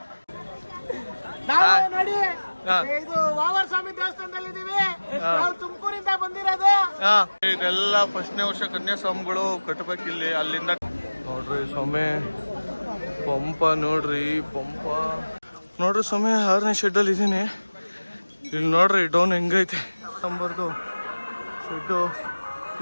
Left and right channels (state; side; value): inverted; both; correlation -1.00